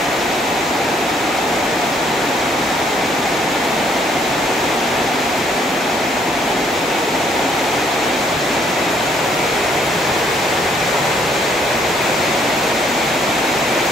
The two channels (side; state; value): both; normal; correlation 0.67